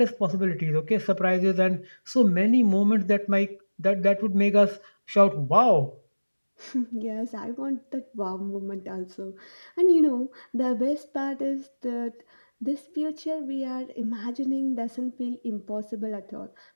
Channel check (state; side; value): inverted; both; correlation -1.00